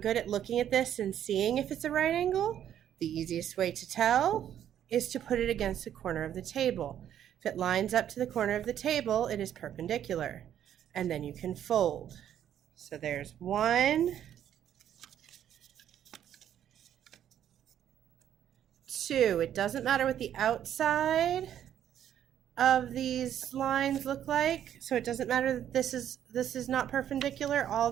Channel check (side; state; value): left; quieter; 10.3 dB